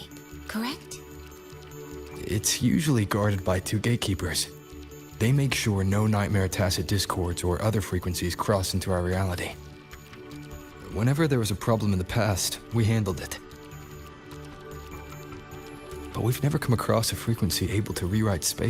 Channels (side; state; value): both; identical; correlation 1.00